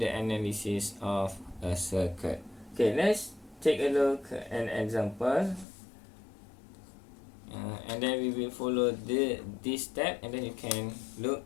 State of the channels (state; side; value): drops out; right; at 5.7 s